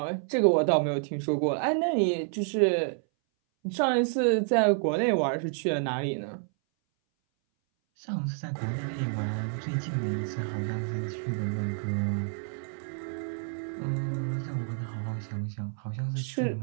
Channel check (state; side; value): silent; left; 59 dB below the other